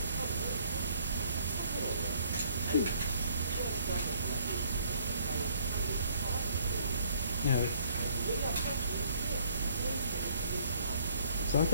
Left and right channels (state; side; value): inverted; both; correlation -0.62